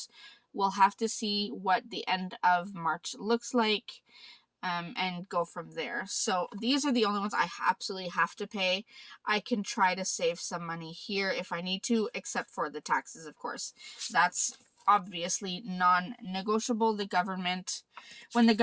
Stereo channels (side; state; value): both; identical; correlation 1.00